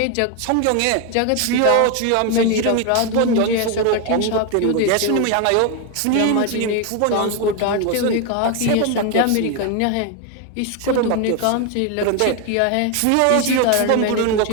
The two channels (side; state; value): both; different; correlation 0.01